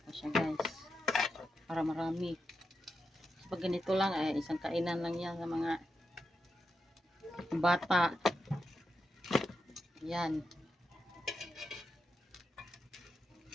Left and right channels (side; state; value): both; normal; correlation 0.87